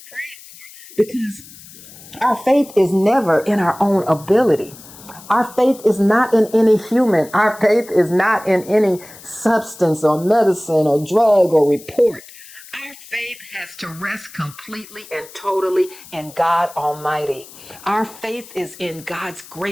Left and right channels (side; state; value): left; noise; hiss, 19 dB below the sound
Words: pray for because our faith is never in our own ability. Our faith is not in any human. Our faith is not in any substance or medicine or drug or report. Our faith has to rest completely and totally in God Almighty. Our faith is in God's